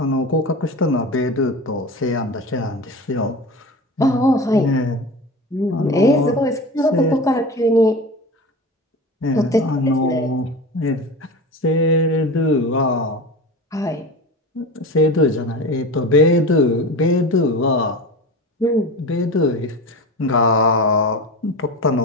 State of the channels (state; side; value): normal; both; correlation 0.30